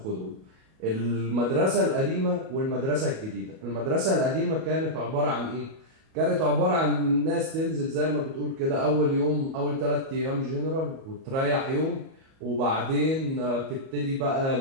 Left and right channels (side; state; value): left; late; 37 ms